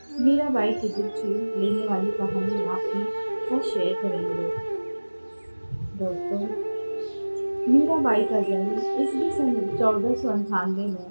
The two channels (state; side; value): inverted; both; correlation -1.00